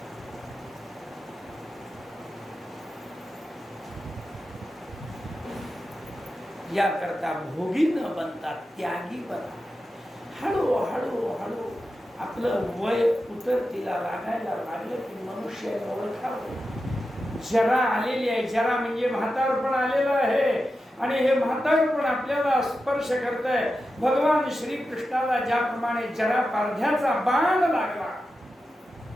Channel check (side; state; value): both; normal; correlation 0.91